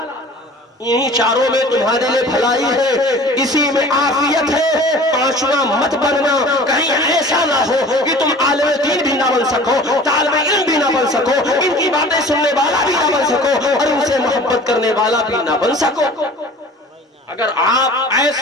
انہی چاروں میں تمہارے لیے بھلائی ہے، اسی میں عافیت ہے۔ پانچواں مت بننا، کہیں ایسا نہ ہو کہ تم عالم دین بھی نہ بن سکو، طالب علم بھی نہ بن سکو، ان کی باتیں سننے والا بھی نہ بن سکو، اور ان سے محبت کرنے والا بھی نہ بن سکو۔ اگر آپ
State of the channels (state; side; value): normal; both; correlation 0.44